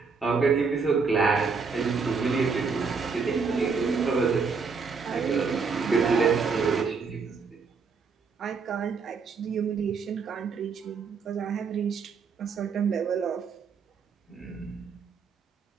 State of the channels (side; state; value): left; quieter; 5.1 dB